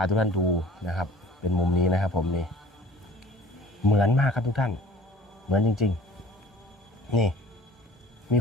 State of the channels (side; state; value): both; normal; correlation 0.48